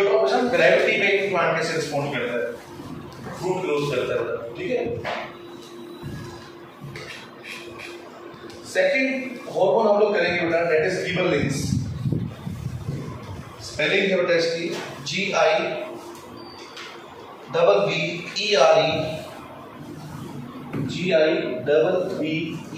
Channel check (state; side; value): identical; both; correlation 1.00